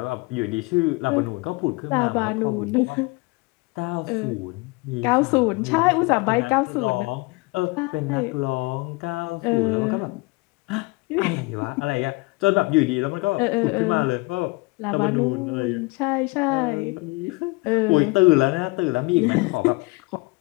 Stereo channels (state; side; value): quieter; right; 25.8 dB